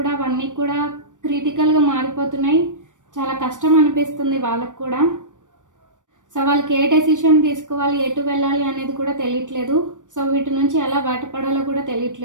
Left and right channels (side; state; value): left; late; 0.87 ms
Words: అవన్నీ కూడా క్రిటికల్గా మారిపోతున్నాయి. చాలా కష్టం అనిపిస్తుంది వాళ్ళకు కూడా. సో వాళ్ళకి ఏ డెసిషన్ తీసుకోవాలి, ఎటు వెళ్ళాలి అనేది కూడా తెలియట్లేదు. సో వీటి నుంచి ఎలా బయటపడాలో కూడా